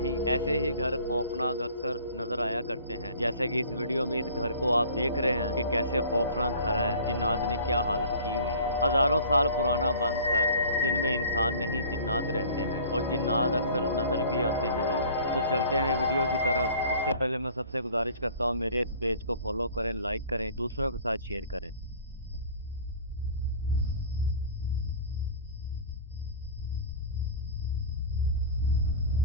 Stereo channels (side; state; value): both; inverted; correlation -0.45